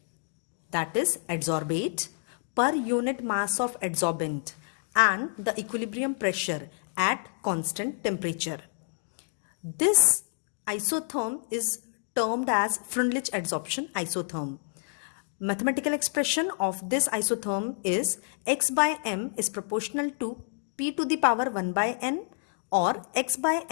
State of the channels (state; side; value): silent; right; digital silence